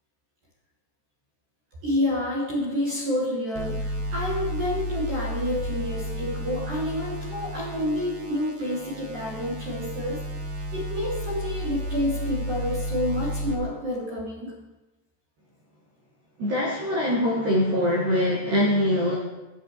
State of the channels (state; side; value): late; left; 14 ms